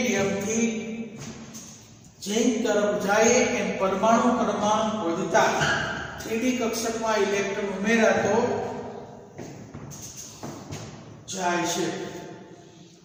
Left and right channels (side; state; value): both; identical; correlation 1.00